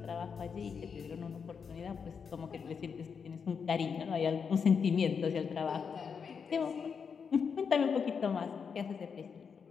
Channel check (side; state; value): right; quieter; 6.2 dB